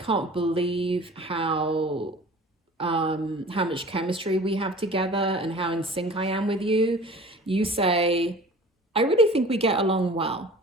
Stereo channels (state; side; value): normal; both; correlation 0.43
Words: believe how much chemistry we have together and how in sync I am with you, you say, I really think we get along well.